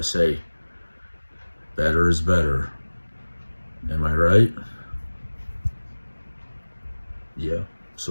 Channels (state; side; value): inverted; both; correlation -1.00